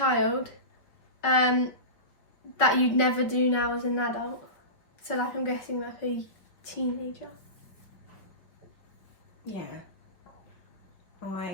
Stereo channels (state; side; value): late; right; 5.2 ms